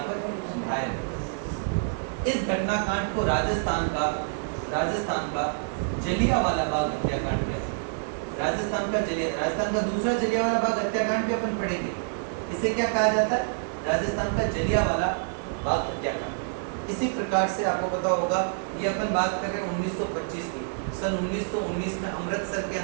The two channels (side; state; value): left; silent; digital silence